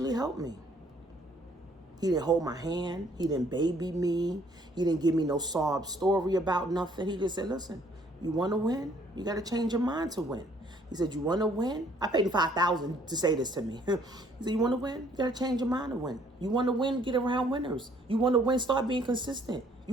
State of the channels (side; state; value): both; normal; correlation 0.62